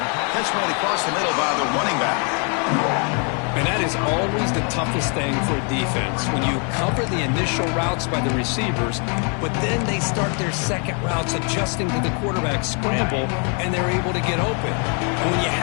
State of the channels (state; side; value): quieter; right; 38.3 dB